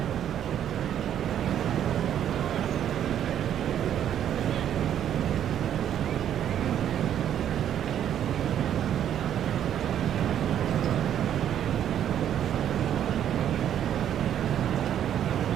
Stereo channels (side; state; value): left; quieter; 10.1 dB